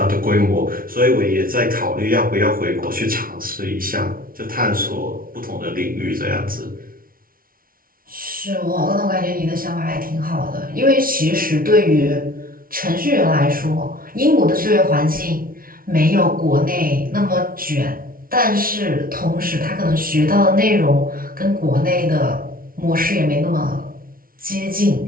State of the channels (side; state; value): left; late; 0.42 ms